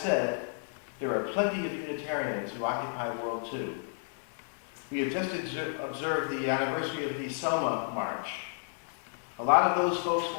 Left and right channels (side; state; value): right; silent; 57 dB below the other